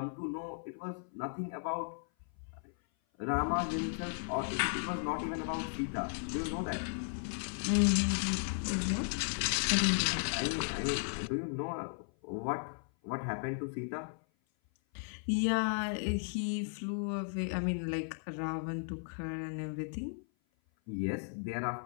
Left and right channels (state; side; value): silent; right; 54 dB below the other